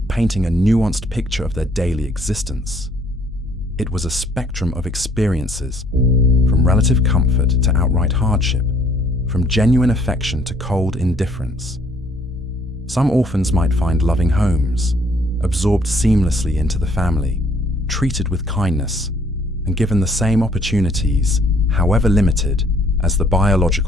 painting a nuanced picture of their daily existence. It was a spectrum of experiences, from relative comfort to outright hardship, from genuine affection to cold indifference. Some orphans might find loving homes, absorbed seamlessly into the family, treated with kindness, and given the same opportunities, however limited, as the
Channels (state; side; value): normal; both; correlation 0.62